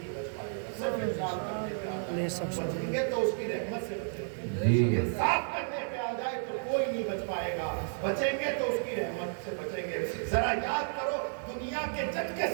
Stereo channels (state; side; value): silent; left; digital silence